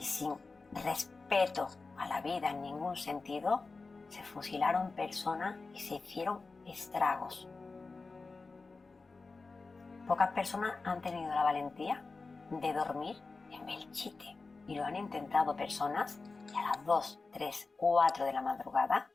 sin respeto a la vida en ningún sentido, se fusilaron personas y se hicieron estragos. Pocas personas han tenido la valentía de dormir en Belchite y lo han intentado personas y a las 2, 3, 4 de la madrugada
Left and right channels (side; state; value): right; quieter; 3.9 dB